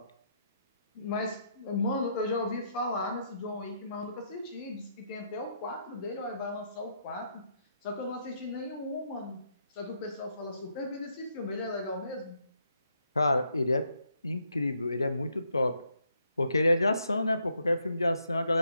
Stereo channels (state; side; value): inverted; both; correlation -0.75